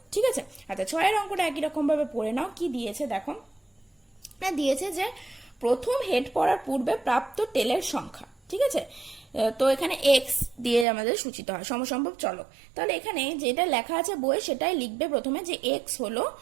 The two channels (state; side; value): drops out; left; at 10.9 s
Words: ঠিক আছে? আচ্ছা, 6 অঙ্কটা একই রকম ভাবে পড়ে নাও। কি দিয়েছে দেখো, দিয়েছে যে প্রথম হেড পড়ার পূর্বে প্রাপ্ত টেলের সংখ্যা, ঠিক আছে? তো এখানে এক্স দিয়ে আমাদের সূচিত হয় সমসম্ভব চলক। তাহলে এখানে যেটা লেখা আছে বইয়ে সেটাই লিখবে প্রথমে, যে এক্স হলো